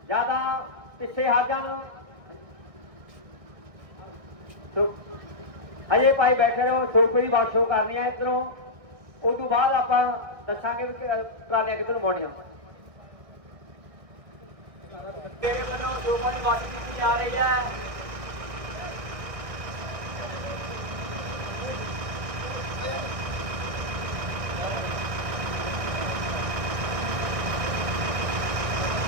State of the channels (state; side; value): late; left; 1.6 ms